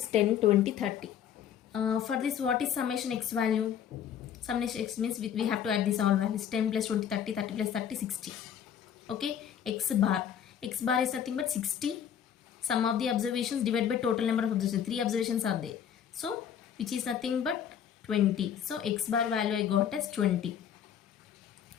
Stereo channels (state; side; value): quieter; right; 9.0 dB